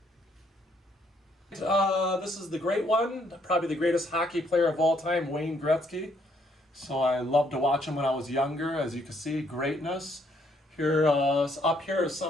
This is the great one, probably the greatest hockey player of all time, Wayne Gretzky. So I loved to watch him when I was younger. As you can see, greatness. Here, up here are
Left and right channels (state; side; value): normal; both; correlation 0.69